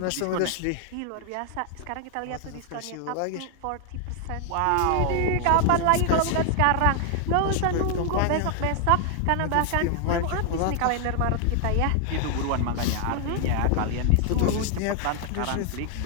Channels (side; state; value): both; different; correlation 0.00